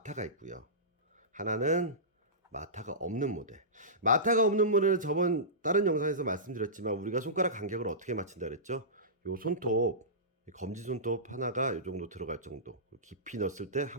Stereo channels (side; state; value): both; normal; correlation -0.20